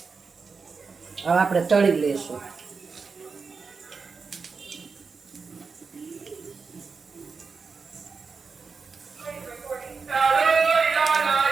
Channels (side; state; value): left; quieter; 4.9 dB